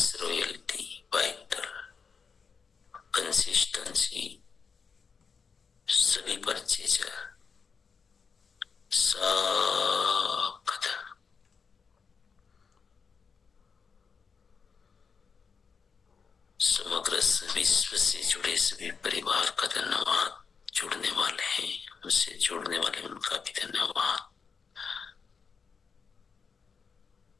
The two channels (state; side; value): quieter; right; 5.6 dB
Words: रॉयल्टी, वाइटल, कंसिस्टेंसी, सभी परचेजर, सब समग्र विश्व से जुड़े सभी परिवार का धन्यवाद। जुड़ने वाले हैं, हमसे जुड़ने वाले उनका भी धन्यवाद,